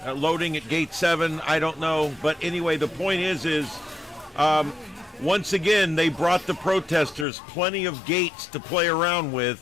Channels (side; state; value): right; drops out; at 7.2 s